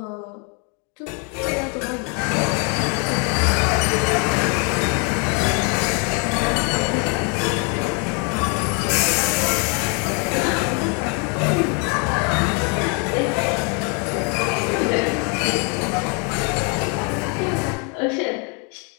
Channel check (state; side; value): quieter; right; 35.7 dB